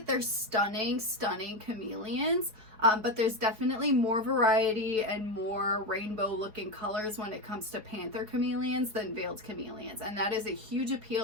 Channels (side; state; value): left; late; 4.7 ms